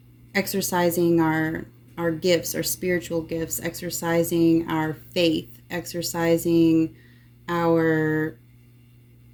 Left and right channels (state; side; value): identical; both; correlation 1.00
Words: exercising our gifts, our spiritual gifts, exercising our faith, exercising our